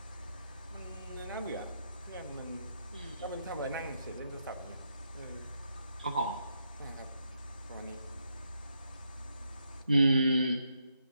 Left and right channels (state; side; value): inverted; both; correlation -0.80